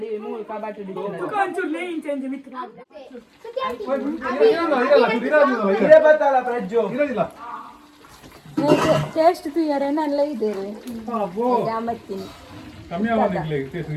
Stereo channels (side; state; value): both; identical; correlation 1.00